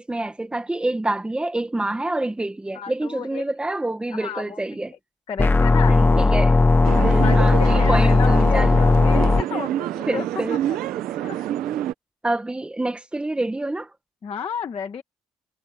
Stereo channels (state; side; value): normal; both; correlation 0.89